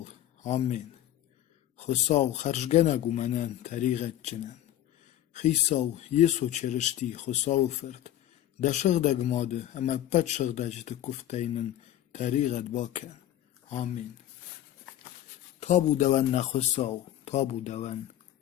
Amin. Khosav kharjgenagu menen tariqetçinen. Khisav yeso çerişti khosav fırt. Da şıgdeg madı ama pet şıgdecti kufteynin tariqet baken. Amin. Tabu deven ne khosav. Tabu deven.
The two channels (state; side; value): quieter; right; 12.6 dB